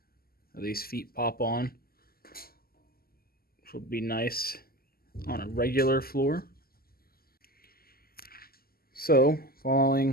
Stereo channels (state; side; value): late; right; 0.44 ms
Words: These feet pop on, which would be nice on a regular floor. So,